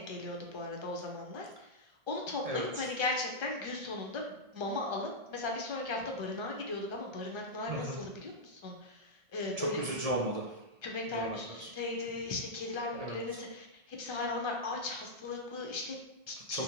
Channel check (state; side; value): late; left; 1.7 ms